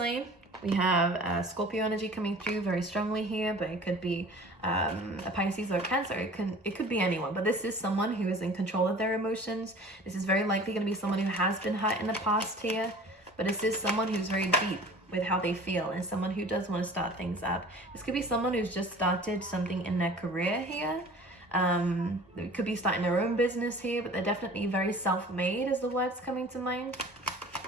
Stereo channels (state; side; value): normal; both; correlation 0.44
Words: We have Scorpio energy coming through very strongly here, but it could be a Pisces or a Cancer. It could be anyone, but this is someone who is in control of their emotions. This is very likely going to be someone who has been hurt in the past here, but this is someone who's very deep with how they feel and someone who does want to start things up. This could be someone who's just started something in their career here. They could be starting their own business here, but they're definitely very self-made is the words coming to mind.